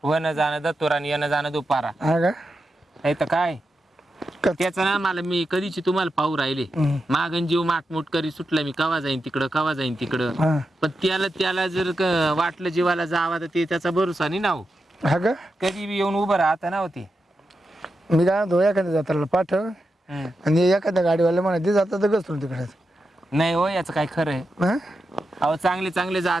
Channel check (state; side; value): normal; both; correlation 0.88